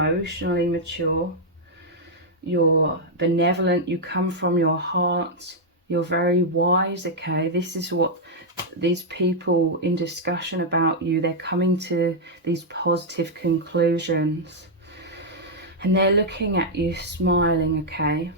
mature, you're benevolent, you come from your heart, you're very wise, okay? This is what these people in discussion about you, they're coming to these positive conclusions. And they're looking at you smiling, okay?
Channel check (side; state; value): both; normal; correlation -0.04